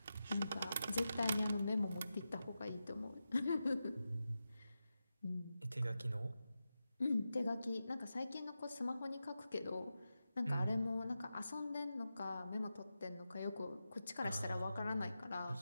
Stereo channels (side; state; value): both; inverted; correlation -0.91